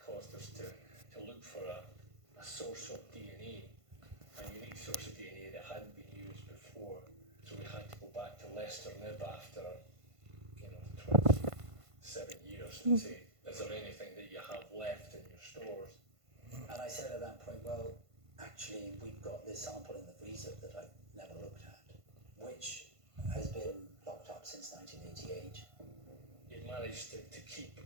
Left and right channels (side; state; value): left; late; 1.5 ms